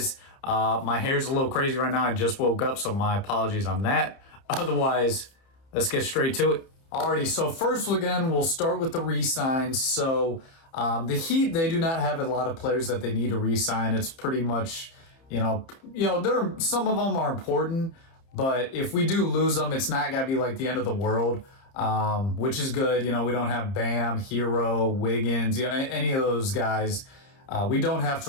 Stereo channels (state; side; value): late; right; 30 ms